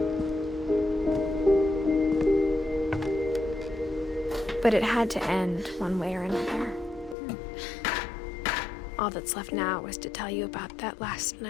But it had to end one way or another. All that's left now is to tell you about that last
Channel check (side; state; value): right; drops out; at 7.2 s